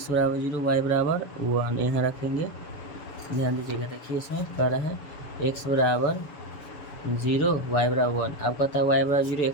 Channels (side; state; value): right; late; 7.0 ms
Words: बराबर 0 y बराबर 1 यहाँ रखेंगे। ध्यान दीजिएगा, देखिए इसमें कह रहा है x बराबर 0 y बराबर 1। अब कहता है y बराबर 0